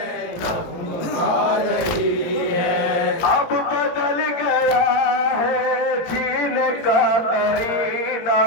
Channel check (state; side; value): late; right; 17 ms